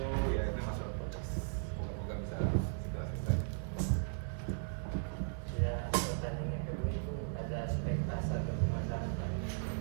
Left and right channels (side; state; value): left; silent; 53 dB below the other